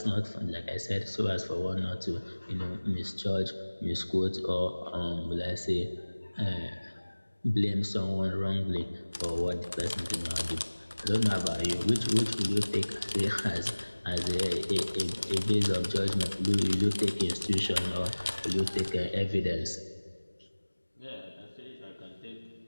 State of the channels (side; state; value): both; inverted; correlation -1.00